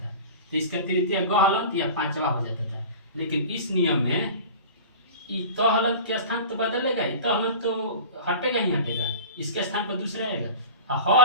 तो इसका तृतीय ग हलंत या पांचवा हो जाता था। लेकिन इस नियम में त हलंत के स्थान तो बदलेगा ही, त हलंत तो हटेगा ही हटेगा, इसके स्थान पर दूसरा आएगा, ह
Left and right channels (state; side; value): inverted; both; correlation -0.36